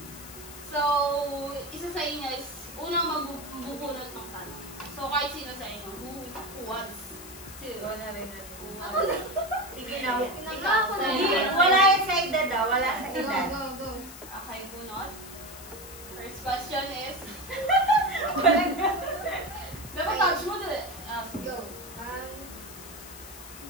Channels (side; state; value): left; noise; hiss, 15 dB below the sound